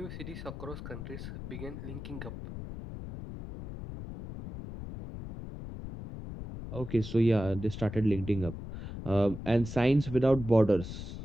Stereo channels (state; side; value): noise; left; rumble, 9 dB below the sound